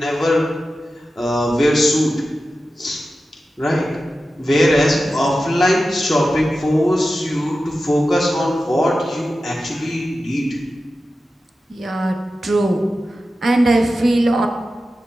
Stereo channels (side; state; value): both; normal; correlation 0.93